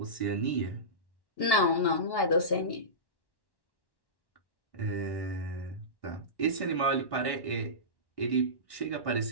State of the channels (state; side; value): late; right; 1.1 ms